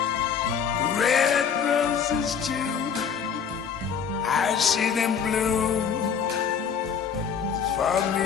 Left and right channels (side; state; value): right; quieter; 7.1 dB